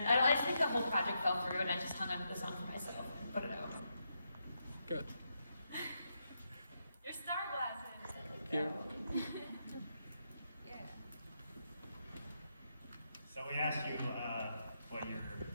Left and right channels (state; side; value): inverted; both; correlation -0.82